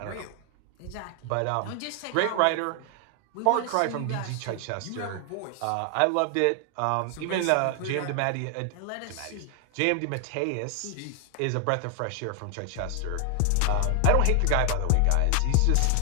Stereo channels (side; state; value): both; different; correlation 0.00